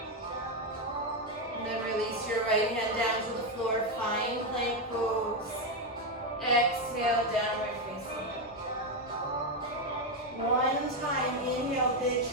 And then release your right hand down to the floor. Find plank pose. Exhale, downward facing dog. One time, inhale, big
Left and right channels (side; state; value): both; normal; correlation 0.06